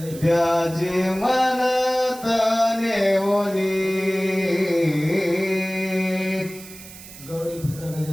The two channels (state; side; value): noise; right; hiss, 17 dB below the sound